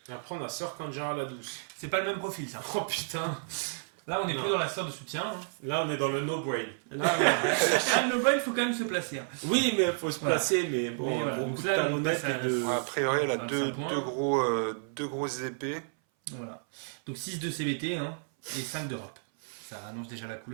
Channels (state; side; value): silent; left; 57 dB below the other